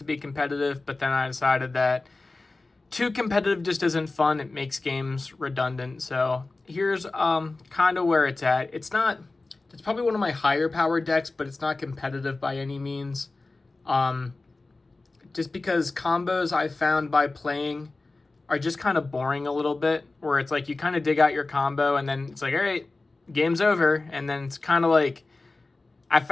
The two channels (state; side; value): quieter; right; 3.3 dB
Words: be competitive, but then I decided that too competitive just isn't fun. It makes games redundant. So here's kind of where it's at. It's probably one of my higher power decks, but it's not competitive by any means. Just because combos I found by playing are just kind of boring a little bit, where it's like you kind of dig out your combo and then it's like, all right, game's over. And then it's kind of like, I